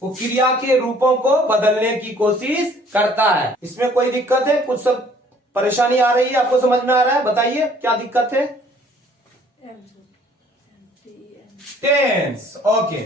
वो क्रिया के रूपों को बदलने की कोशिश करता है। इसमें कोई दिक्कत है, कुछ सब परेशानी आ रही है, आपको समझ में आ रहा है, बताइए क्या दिक्कत है। Tense, okay.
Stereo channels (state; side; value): normal; both; correlation 0.58